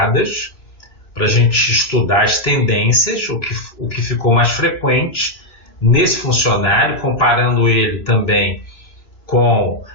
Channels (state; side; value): late; right; 3.0 ms